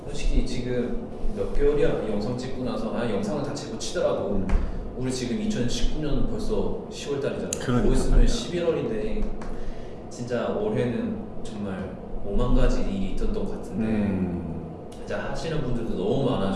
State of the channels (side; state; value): both; identical; correlation 1.00